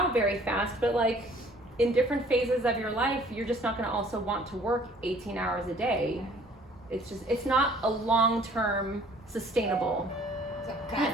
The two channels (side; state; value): both; normal; correlation 0.55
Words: very fast, but like in different phases of your life, you're just not going to also want to work 18 hours a day. It's not a long-term sustainable. So kind